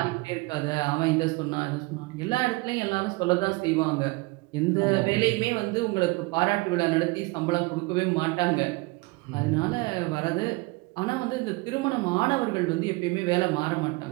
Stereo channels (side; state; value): left; quieter; 25.2 dB